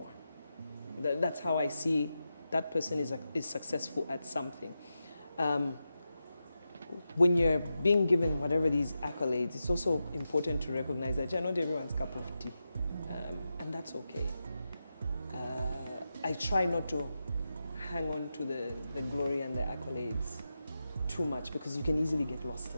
That's how I see that person is successful at something. When you're being given whatever these accolades, it's also important to recognize that you're not everyone's cup of tea, and that's okay. I try not to hang on to the glory and the accolades too much, because you can easily get lost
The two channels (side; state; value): both; inverted; correlation -0.90